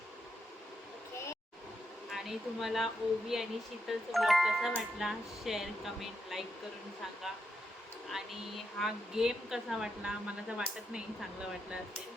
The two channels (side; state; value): both; normal; correlation 0.83